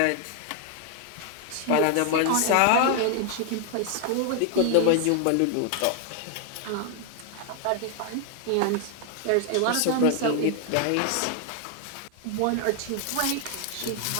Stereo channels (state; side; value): different; both; correlation 0.00